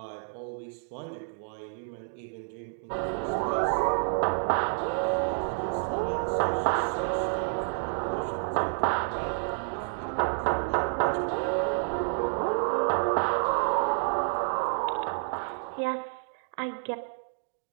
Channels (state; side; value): silent; left; 58 dB below the other